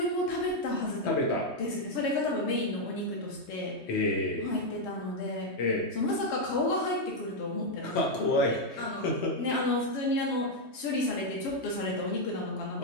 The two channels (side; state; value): right; late; 3.2 ms